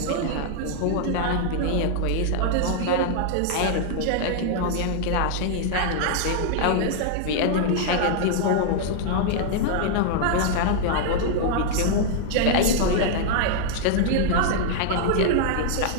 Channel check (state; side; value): different; both; correlation -0.01